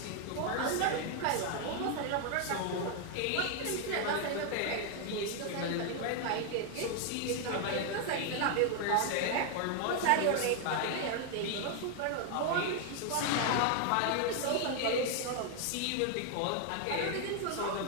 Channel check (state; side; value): different; both; correlation 0.00